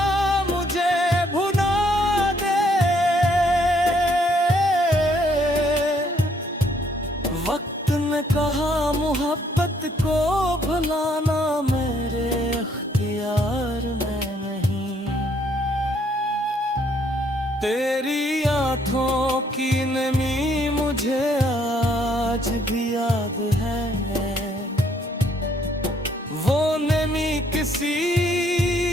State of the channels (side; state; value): both; normal; correlation 0.67